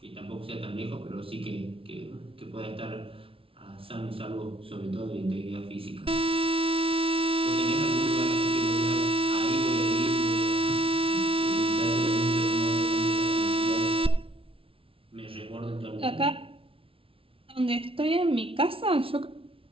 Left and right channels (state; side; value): late; left; 0.26 ms